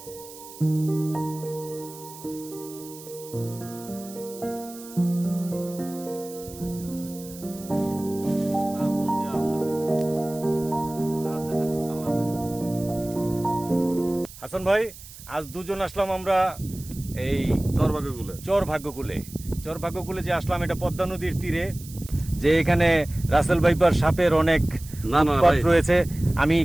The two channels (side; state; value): right; noise; hiss, 17 dB below the sound